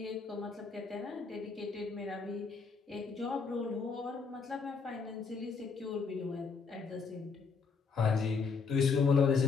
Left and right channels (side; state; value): right; quieter; 5.1 dB